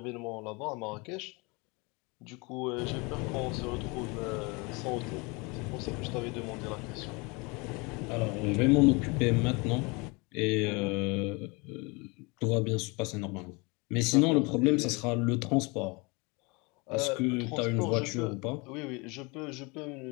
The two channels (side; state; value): right; quieter; 28.1 dB